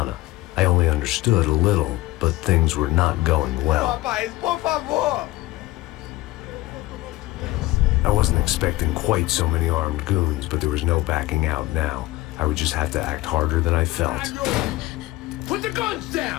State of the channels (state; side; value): quieter; right; 18.2 dB